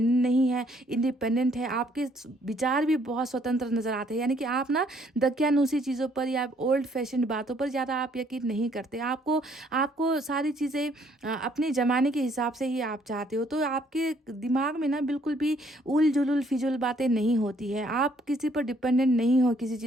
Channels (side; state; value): both; normal; correlation 0.65